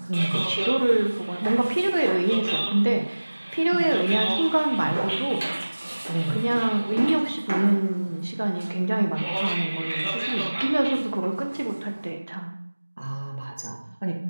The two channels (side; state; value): both; inverted; correlation -1.00